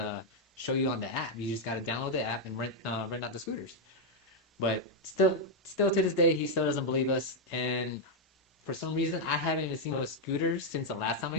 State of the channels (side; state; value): both; normal; correlation 0.00